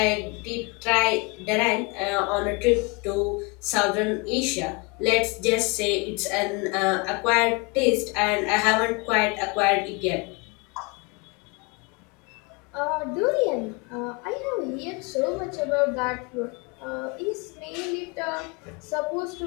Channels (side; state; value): right; quieter; 28.9 dB